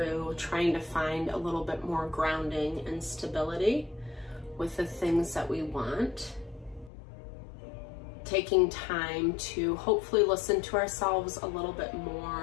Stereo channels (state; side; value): drops out; right; at 6.9 s